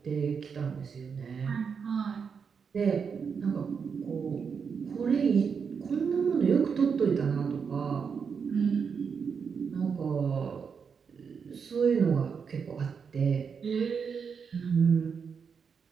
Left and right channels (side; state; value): left; quieter; 6.2 dB